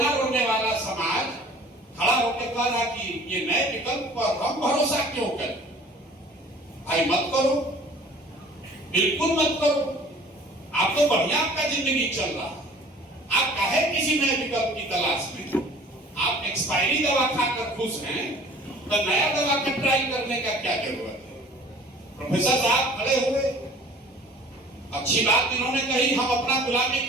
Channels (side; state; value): both; normal; correlation 0.48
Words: रोने वाला समाज खड़ा होकर कह रहा कि ये नए विकल्प पर हम भरोसा क्यों करें? भाई मत करो, बिल्कुल मत करो। आप तो बढ़िया आपका जिंदगी चल रहा है, आप काहे किसी नए विकल्प की तलाश में? आप एक्सपायरी दवा खाकर खुश हैं, तो नया दवा का ट्राई करने का क्या जरूरत है? प्रोफेसर साहब खड़े हुए, अच्छी बात इन्होंने कही, हम अपना गुलामी